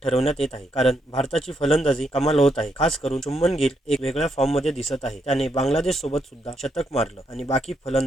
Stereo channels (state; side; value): normal; both; correlation 0.78